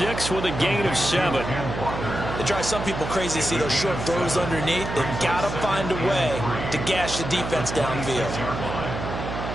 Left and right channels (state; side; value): noise; right; hum, 6 dB below the sound